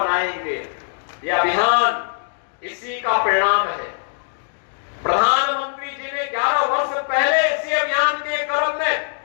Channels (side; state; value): right; silent; digital silence